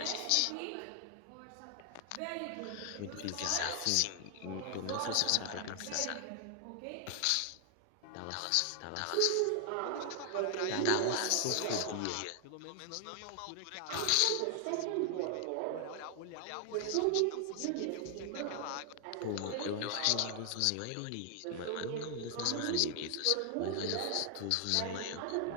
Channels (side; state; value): both; different; correlation 0.00